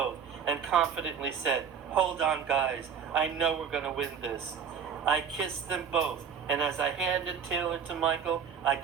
and confidently said, "Hold on, guys. I know we're going to win this." I kissed them both, and as I handed Taylor to Michael, I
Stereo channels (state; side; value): quieter; left; 7.1 dB